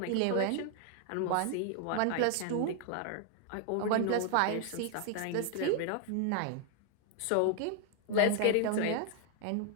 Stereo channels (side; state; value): both; different; correlation 0.00